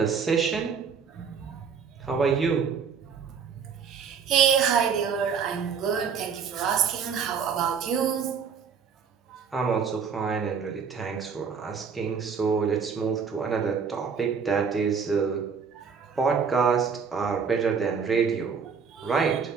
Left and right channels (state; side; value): quieter; left; 6.3 dB